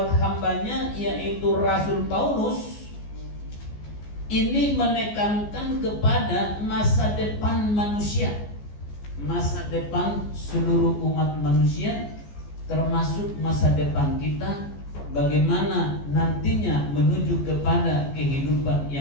hambanya, yaitu Rasul Paulus. Ini menekankan kepada masa depan manusia, masa depan seluruh umat manusia, termasuk masa depan kita, bagaimana nantinya menuju kepada kehidupan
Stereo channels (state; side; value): late; right; 14 ms